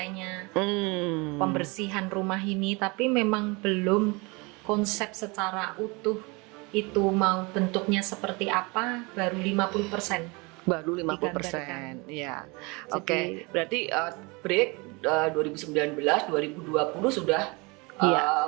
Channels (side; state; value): left; quieter; 27.5 dB